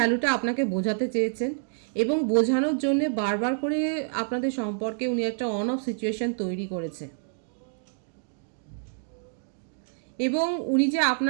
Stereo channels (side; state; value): left; silent; digital silence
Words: আপনাকে বোঝাতে চেয়েছেন। এবং বোঝানোর জন্যে বারবার করে আপনাদের সম্পর্কে উনি একটা অন অফ সিচুয়েশন তৈরি করেছে। এবং উনি যে